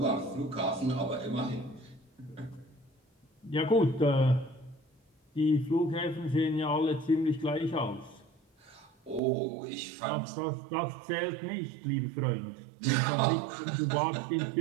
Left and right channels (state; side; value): drops out; left; at 9.2 s